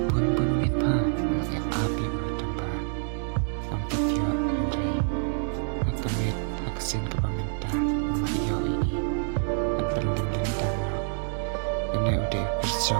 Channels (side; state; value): left; silent; digital silence